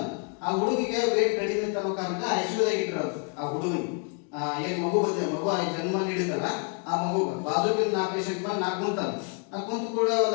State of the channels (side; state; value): right; quieter; 38.2 dB